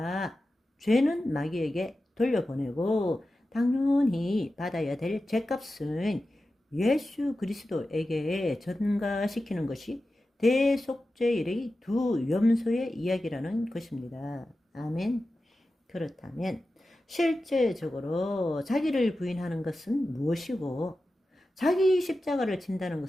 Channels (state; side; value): normal; both; correlation 0.93